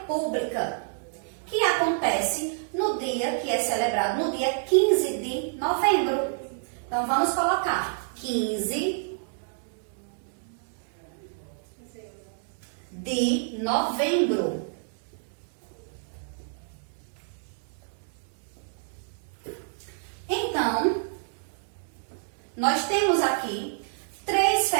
que acontece no dia que é celebrado, no dia 15 de novembro. Então, vamos colocar 15 de novembro. Então, nós temos aqui 3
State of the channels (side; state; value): left; silent; digital silence